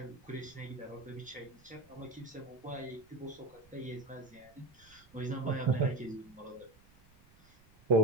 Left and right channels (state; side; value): noise; right; rumble, 27 dB below the sound